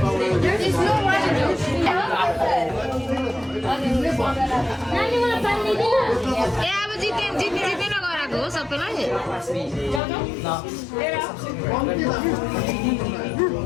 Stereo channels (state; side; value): drops out; right; at 10.0 s